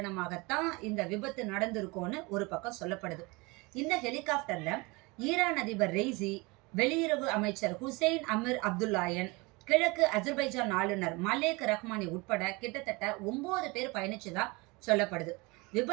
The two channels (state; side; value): quieter; left; 25.5 dB